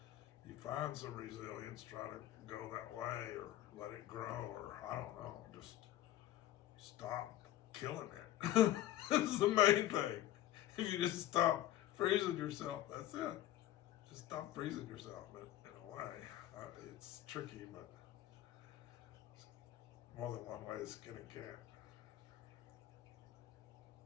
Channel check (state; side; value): quieter; right; 13.5 dB